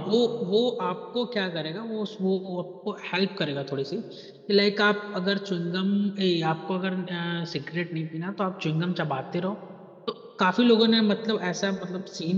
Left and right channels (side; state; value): both; identical; correlation 1.00